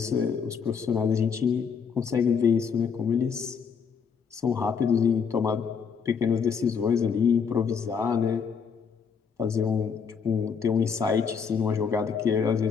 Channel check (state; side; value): quieter; right; 6.3 dB